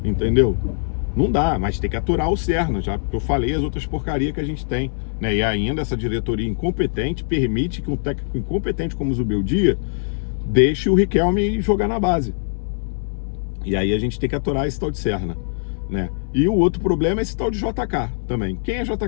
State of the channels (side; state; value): right; silent; 64 dB below the other